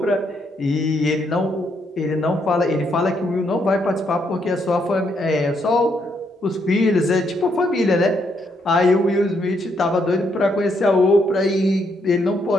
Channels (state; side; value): normal; both; correlation 0.75